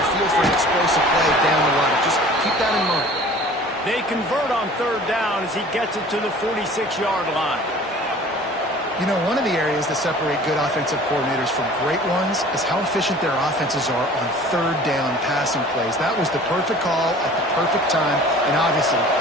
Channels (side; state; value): both; normal; correlation 0.46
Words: field for an explosive play down the line. Just keep that in mind. They convert on 3rd down as he gets it to the 46-yard line. You know, one of the areas that separate good offensive coordinators from great ones is how efficient their offenses are on 3rd down passing plays. That was the perfect call at the perfect time and obviously